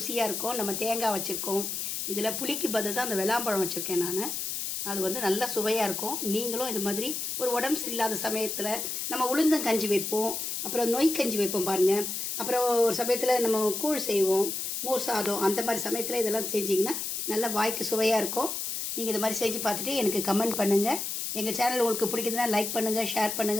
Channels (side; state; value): left; noise; hiss, 3 dB below the sound